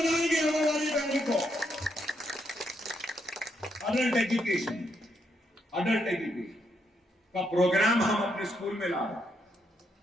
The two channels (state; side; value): normal; both; correlation 0.78